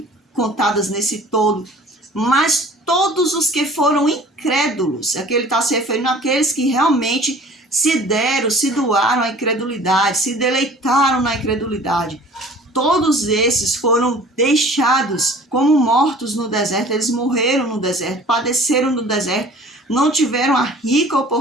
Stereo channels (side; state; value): both; normal; correlation 0.48